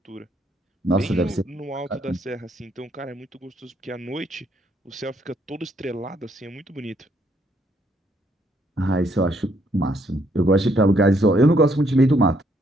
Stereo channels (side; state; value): both; normal; correlation 0.71